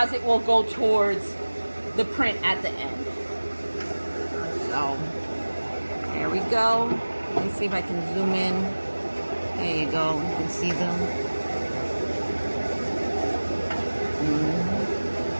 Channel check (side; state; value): both; inverted; correlation -1.00